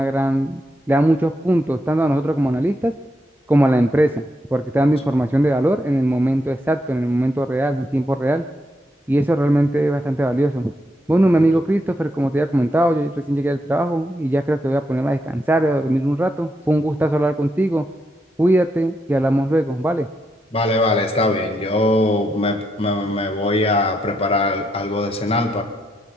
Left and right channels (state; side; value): normal; both; correlation 0.81